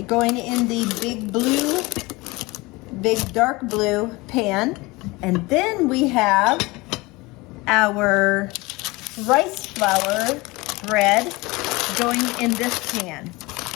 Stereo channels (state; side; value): quieter; right; 22.9 dB